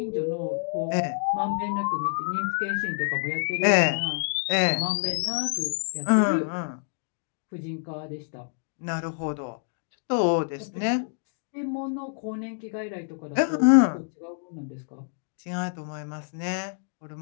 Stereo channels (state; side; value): silent; right; digital silence